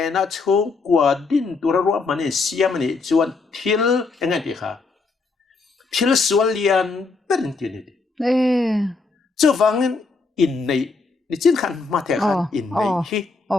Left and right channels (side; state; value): right; quieter; 4.1 dB